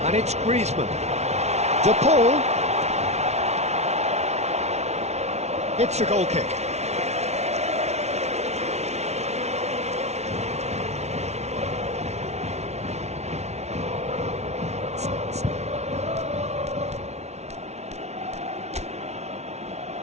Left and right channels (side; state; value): left; late; 0.32 ms